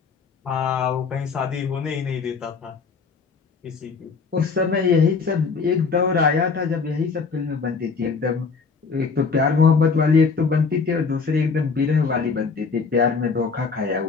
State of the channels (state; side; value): quieter; right; 5.0 dB